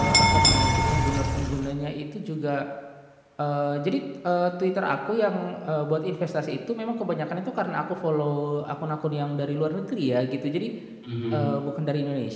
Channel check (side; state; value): both; identical; correlation 1.00